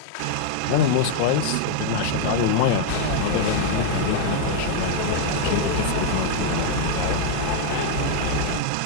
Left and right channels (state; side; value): different; both; correlation 0.00